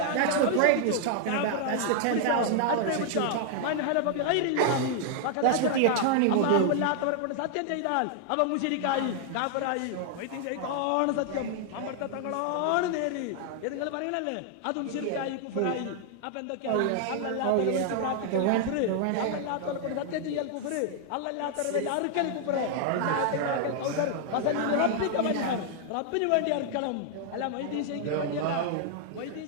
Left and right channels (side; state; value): both; different; correlation 0.00